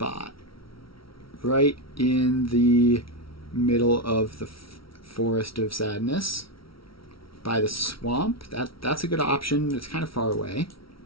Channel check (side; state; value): right; late; 0.75 ms